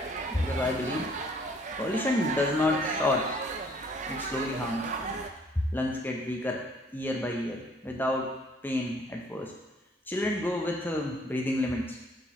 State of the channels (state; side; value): normal; both; correlation 0.60